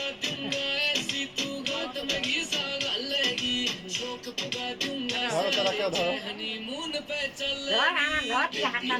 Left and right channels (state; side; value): identical; both; correlation 1.00